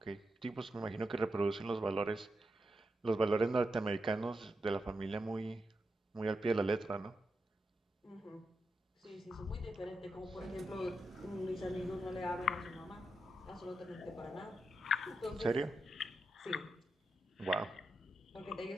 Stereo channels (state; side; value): normal; both; correlation 0.86